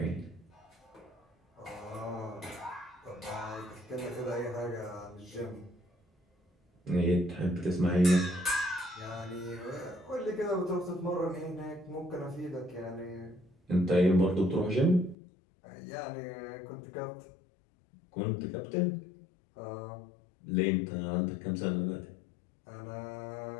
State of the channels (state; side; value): drops out; right; at 15.2 s